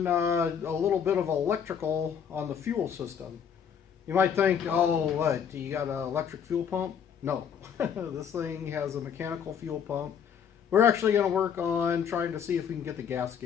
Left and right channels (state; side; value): quieter; right; 7.7 dB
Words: a little bit of electrical on the fuel system. You might think, oh, what? You got an electric fuel pump? No, this thing has a mechanical fuel pump. We're actually going to work on trying to see if we can get the gas